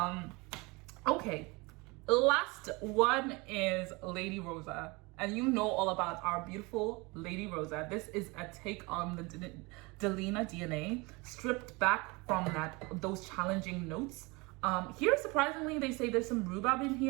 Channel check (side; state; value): left; quieter; 25.9 dB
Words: Okay, last one is Lady Rosa. And you know all about our beautiful Lady Rosa. This is a take on the Delina DNA, stripped back from those challenging notes. Here, surprisingly, they say there's some rhubarb in